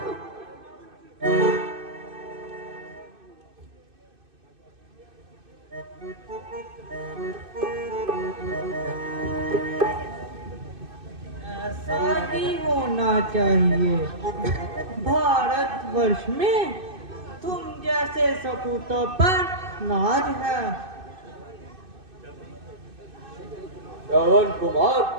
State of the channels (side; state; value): left; late; 2.6 ms